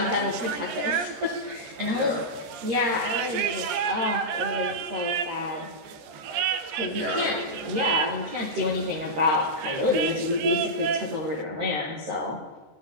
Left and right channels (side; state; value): left; late; 14 ms